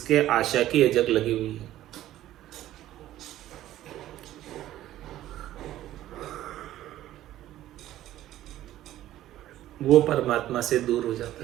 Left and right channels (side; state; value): left; quieter; 13.7 dB